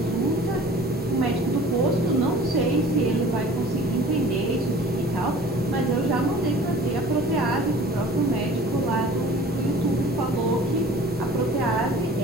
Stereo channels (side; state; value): both; normal; correlation 0.46